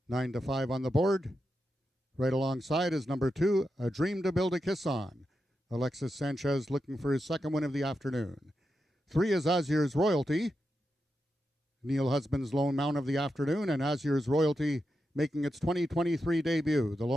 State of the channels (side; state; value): both; normal; correlation 0.87